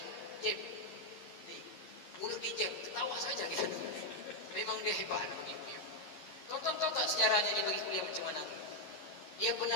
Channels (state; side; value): late; right; 11 ms